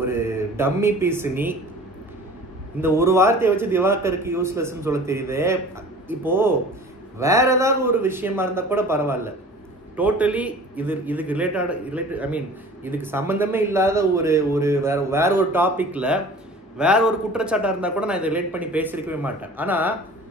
டம்மி பீஸ் நீ. இந்த ஒரு வார்த்தையை வச்சு திவாகருக்கு யூஸ்லெஸ்ன்னு சொல்ல தெரியுது. இப்போ வேற ஏதாவது ஒரு விஷயமா இருந்தா கூட பரவாயில்ல, டோட்டலி இதுக்கு ரிலேட்டட் ஐ மீன் இதுக்கு சம்பந்தமே இல்லாத ஒரு வேற ஒரு டாபிக்ல வேற ஒரு குற்றச்சாட்டா இருந்தா கூட நான் இதை ரிலேட் பண்ணி பேசியிருக்கவே மாட்டேன். ஆனா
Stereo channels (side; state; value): both; normal; correlation 0.44